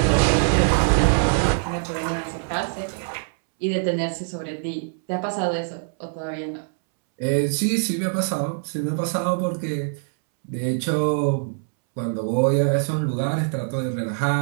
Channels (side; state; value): left; silent; 63 dB below the other